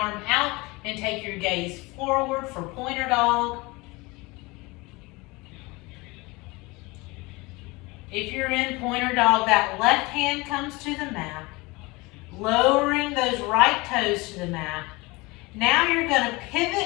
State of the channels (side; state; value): right; quieter; 24.0 dB